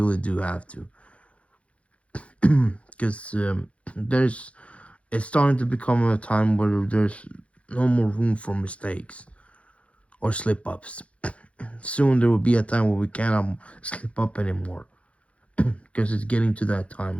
do have to. Because it's starting to become a time where there's no more room for mistakes or slip ups. Soon there will be a time where we cannot slip up anymore because it's getting to that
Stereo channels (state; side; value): late; right; 0.063 ms